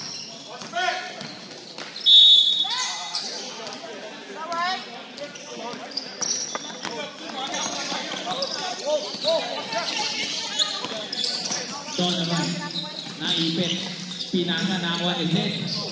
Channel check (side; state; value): both; identical; correlation 1.00